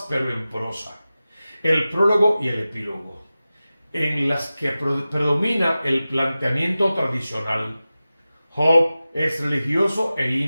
pero en prosa, el prólogo y el epílogo, en las que predomina el planteamiento tradicional. Job es religioso e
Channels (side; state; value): both; inverted; correlation -0.95